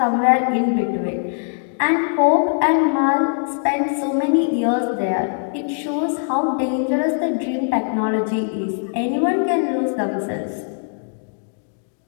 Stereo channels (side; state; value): right; silent; digital silence